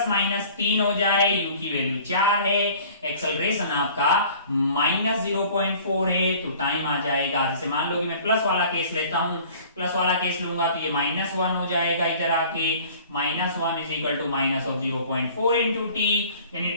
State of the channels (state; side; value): inverted; both; correlation -0.49